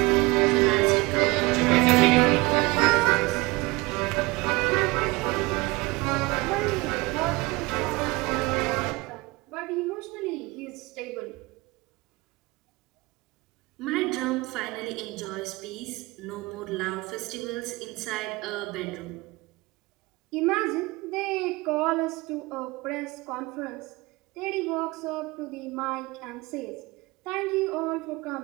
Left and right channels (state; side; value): quieter; left; 22.9 dB